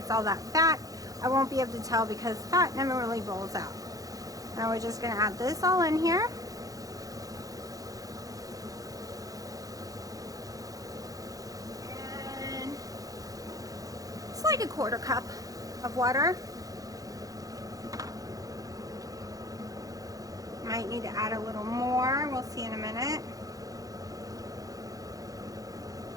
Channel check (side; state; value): left; late; 0.17 ms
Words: all that fat, I won't be able to tell because fat never really boils out. Now we're just going to add this all in here. And it's like a quarter cup of water. Might need to add a little more. We'll see in a minute.